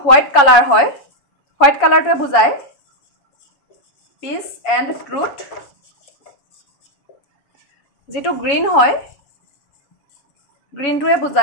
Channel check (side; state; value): right; late; 7.1 ms